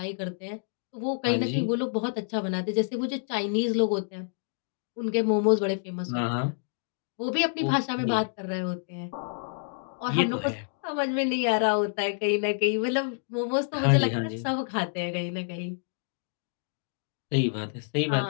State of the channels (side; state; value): right; silent; digital silence